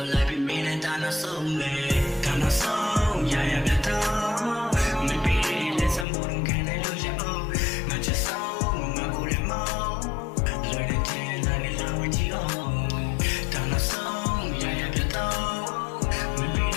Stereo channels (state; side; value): drops out; right; at 6.1 s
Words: ု့လိုက်ပြီးမင်းနဲ့တာနာဆုံးလေတာနာဆုံးရရပြတော့